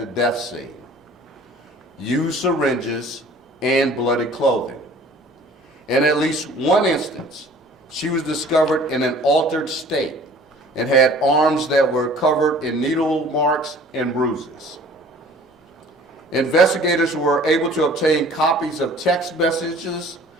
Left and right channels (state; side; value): normal; both; correlation 0.49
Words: death scene, used syringes, and bloody clothing. In at least one instance, she was discovered in an altered state and had arms that were covered in needle marks and bruises. Investigators were able to obtain copies of text messages